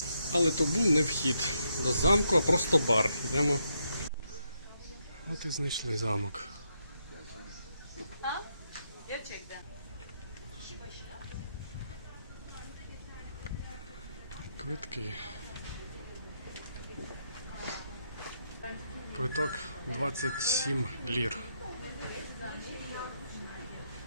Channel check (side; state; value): both; inverted; correlation -0.79